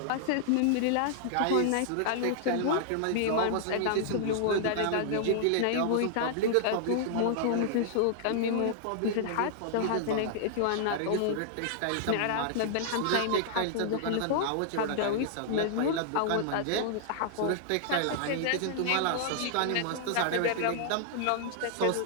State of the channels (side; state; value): both; different; correlation -0.01